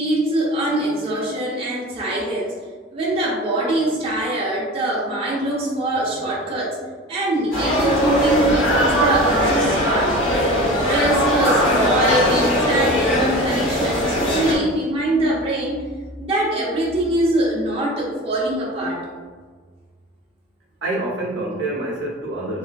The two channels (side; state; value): both; normal; correlation 0.34